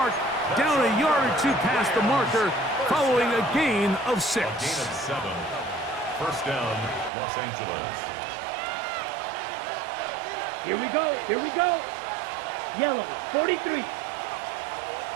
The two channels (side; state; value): left; drops out; at 7.1 s